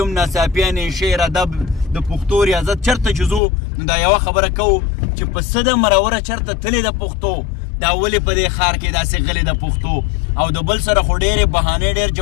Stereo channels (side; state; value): right; drops out; at 3.4 s